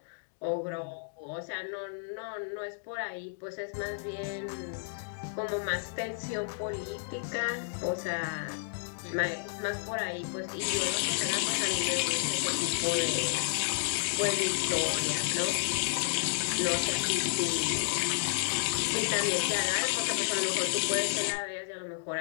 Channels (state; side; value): silent; right; digital silence